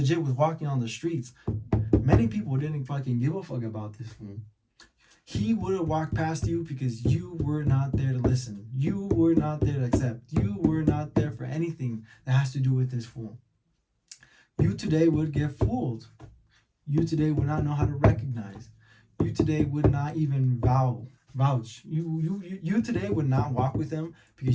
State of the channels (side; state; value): both; identical; correlation 1.00